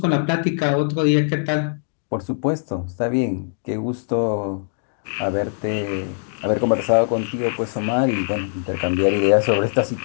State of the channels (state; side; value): silent; right; digital silence